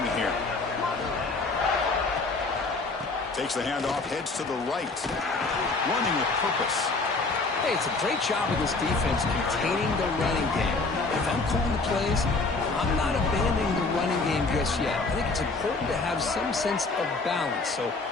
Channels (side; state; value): right; quieter; 3.7 dB